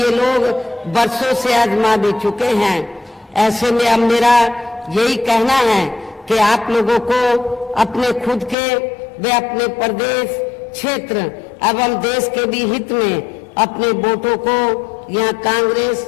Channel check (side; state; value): right; drops out; at 8.6 s